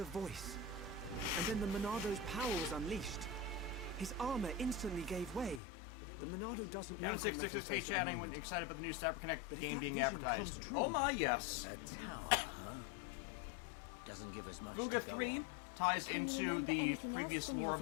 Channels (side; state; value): right; drops out; at 5.6 s